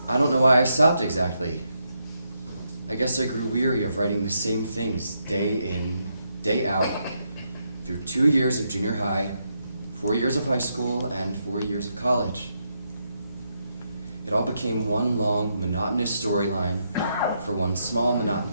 I don't know why I stopped exactly. I guess I grew weary of writing the same things day in, day out, through 2 years of junior high, 4 years of high school, and 4 years of college. It all became one long, monotonous storyline for one small,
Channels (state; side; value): inverted; both; correlation -0.80